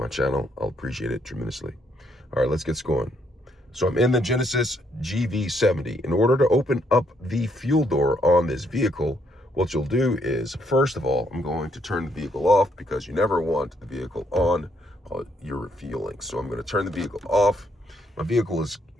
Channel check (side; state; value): both; normal; correlation 0.72